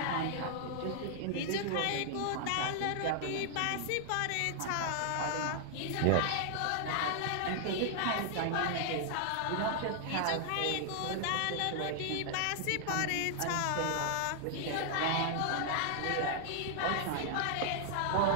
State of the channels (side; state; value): both; different; correlation 0.00